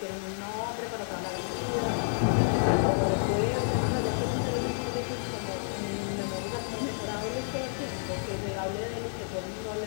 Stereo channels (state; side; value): silent; right; 58 dB below the other